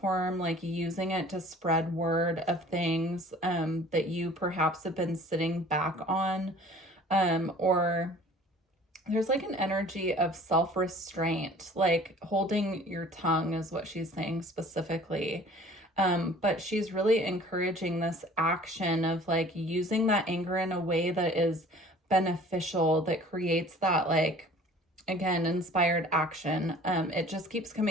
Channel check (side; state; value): both; normal; correlation 0.49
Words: like using it to spread word of things that you perhaps have been sitting back on, or there's like an energy of self-restraint, like holding your tongue is what she's saying specifically. But she's really encouraging this action of like using that anger in a way that is beneficial, that creates that like, again, inspired action. It just keeps